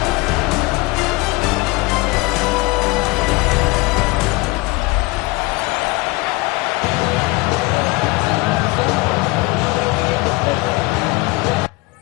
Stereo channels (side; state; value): right; quieter; 23.7 dB